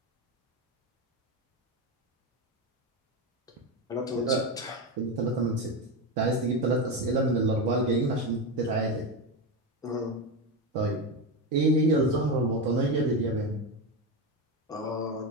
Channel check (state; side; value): normal; both; correlation 0.15